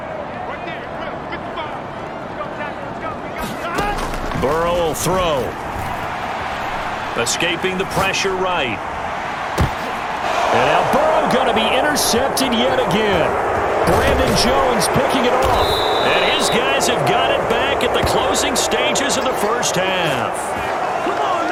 Burrow will throw. Escaping the pressure right. And now Burrow going to be intercepted yet again. Brandon Jones picking it off. And his guys have got it back at the closing stages of the first half.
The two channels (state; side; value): identical; both; correlation 1.00